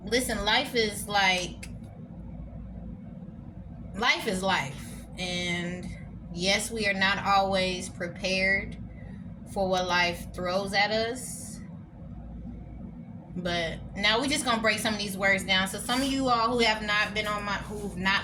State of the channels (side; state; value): both; identical; correlation 1.00